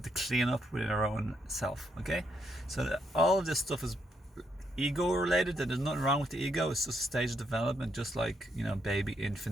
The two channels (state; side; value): normal; both; correlation 0.76